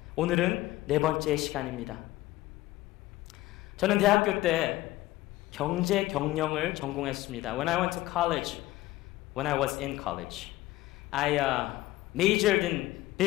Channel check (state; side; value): quieter; right; 17.2 dB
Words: 오늘은 네 번째 시간입니다. 저는 대학교 때 경제 경영을 전공했습니다. When I went to college, when I was in college, I majored in